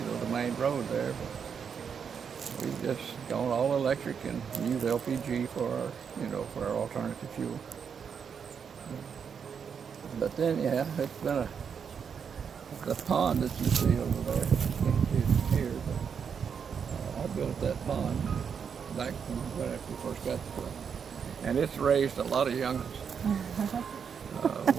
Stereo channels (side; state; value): left; quieter; 6.9 dB